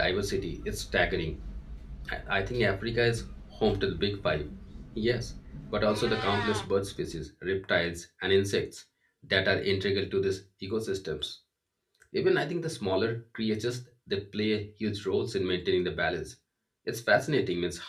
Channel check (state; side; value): identical; both; correlation 1.00